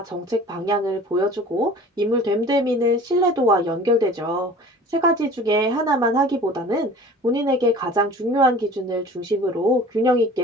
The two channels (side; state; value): both; normal; correlation 0.44